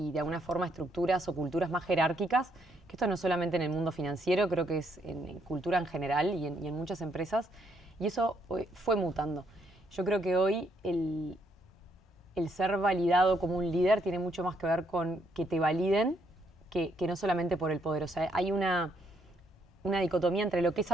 de alguna forma estructuras o culturas más jerárquicas, que esto no es solamente en el mundo financiero, creo que es en cultura en general y en muchas empresas, y eso fue mutando. Yo creo que hoy el ser validado como un líder tiene mucho más que ver con que te validen que no solamente por el poder. O sea, hay una dicotomía entre lo que es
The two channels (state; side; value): normal; both; correlation 0.73